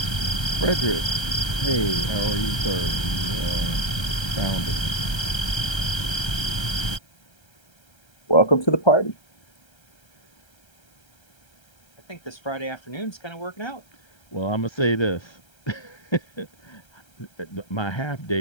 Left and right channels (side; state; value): right; late; 1.3 ms